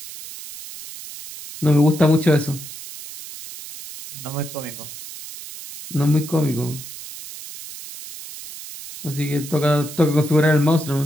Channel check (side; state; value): right; noise; hiss, 13 dB below the sound